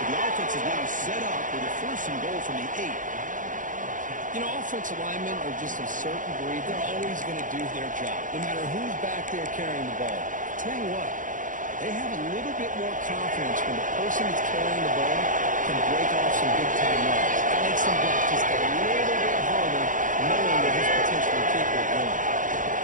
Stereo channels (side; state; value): left; late; 0.38 ms